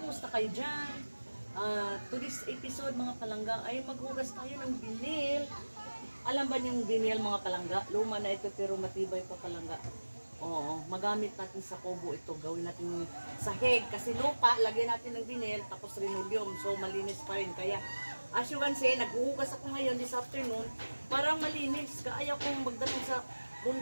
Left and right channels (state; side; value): inverted; both; correlation -1.00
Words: kayo dyan? To this episode mga palangga ay maghugas tayo ng vinil. Alam ba yung vinil mga palangga? Luma na ito pero matibay pa palangga. Oo, magamit natin sa kubo ito. Gawin natin sahig kasi lupa, lagyan natin ng vinil tapos linoleum. So malinis pa rin. Kaya as you can see, naghuhugas ako ngayon this afternoon. Parang malinis. Kaya kong magdating sa